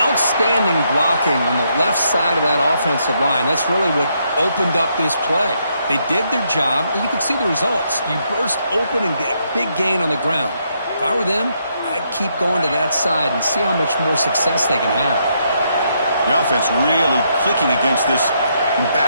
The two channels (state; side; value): inverted; both; correlation -0.76